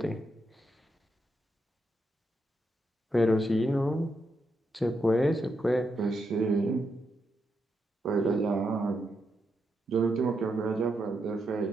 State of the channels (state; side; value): normal; both; correlation 0.82